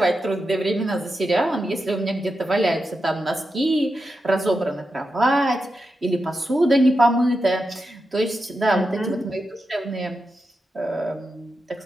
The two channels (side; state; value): both; normal; correlation 0.88